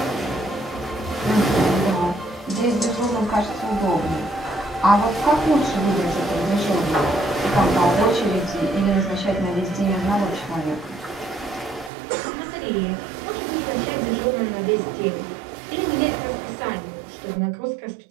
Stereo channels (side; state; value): left; drops out; at 11.9 s